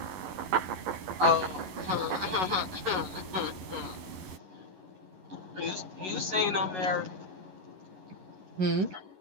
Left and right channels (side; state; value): left; late; 11 ms